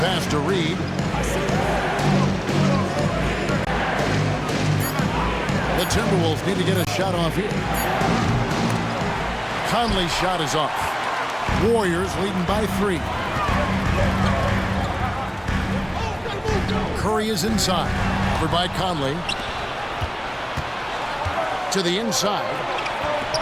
pass to Reed. The Timberwolves need to get a shot off here. Conley's shot is off. Warriors leading by 3. Curry is inside. Covered by Conley. To the inside.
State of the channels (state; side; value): identical; both; correlation 1.00